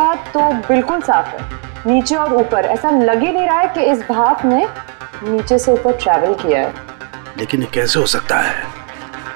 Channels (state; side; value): quieter; left; 36.3 dB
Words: तो बिल्कुल साफ है, नीचे और ऊपर ऐसा लग ही नहीं रहा है कि इस भाप ने नीचे से ऊपर ट्रैवल किया है। लेकिन ये कैसे हो सकता है?